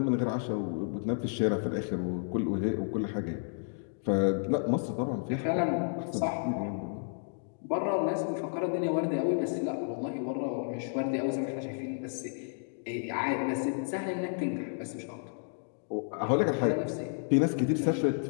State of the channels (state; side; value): silent; right; digital silence